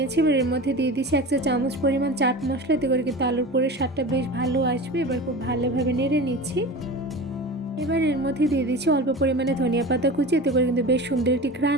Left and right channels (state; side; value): normal; both; correlation 0.32